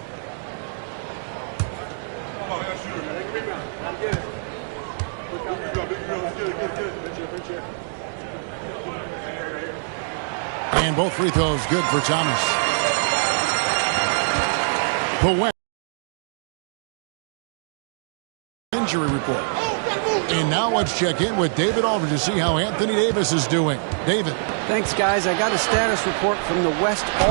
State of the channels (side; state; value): left; silent; 63 dB below the other